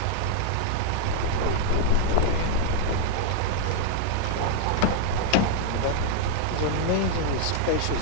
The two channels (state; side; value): different; both; correlation -0.01